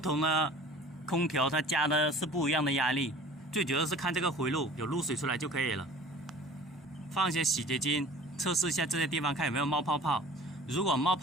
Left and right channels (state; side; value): normal; both; correlation 0.45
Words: 的空调它加的是不一样的压力，最主要是看这个回路有露水出来就可以了。放些洗洁精测试一下这些地方，看有没有冒泡泡。如果冒